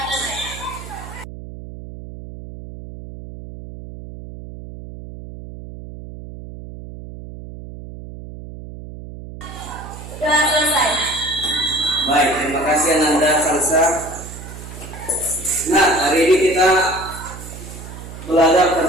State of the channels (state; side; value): noise; right; hum, 13 dB below the sound